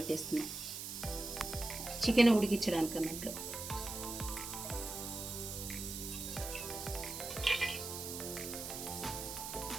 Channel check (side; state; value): right; noise; hiss, 6 dB below the sound